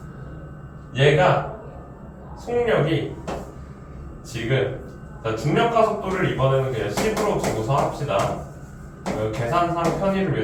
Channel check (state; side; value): identical; both; correlation 1.00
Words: 얘가 속력이 지금 자, 중력과 속도를 이번에는 그냥 10으로 두고서 합시다. 계산상 편의를